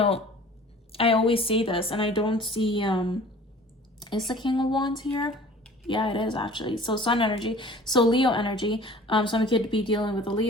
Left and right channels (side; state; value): both; normal; correlation 0.47